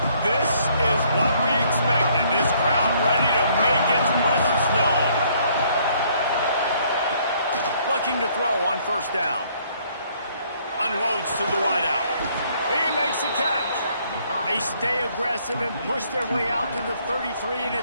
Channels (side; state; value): both; inverted; correlation -0.65